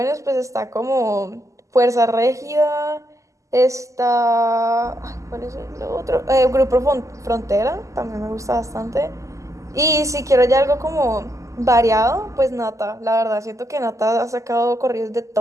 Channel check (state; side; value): late; left; 0.16 ms